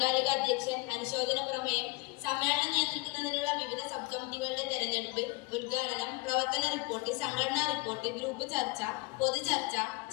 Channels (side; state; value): right; quieter; 25.5 dB